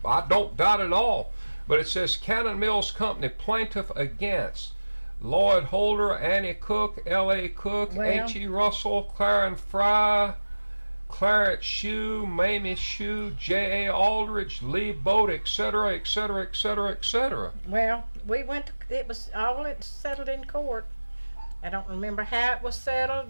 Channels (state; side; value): inverted; both; correlation -1.00